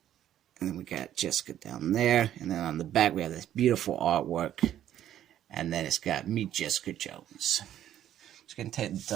and then we got Jessica down there, and then on the back we have this beautiful artwork, and then it's got Meet Jessica Jones. Just gonna take the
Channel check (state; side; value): quieter; left; 11.3 dB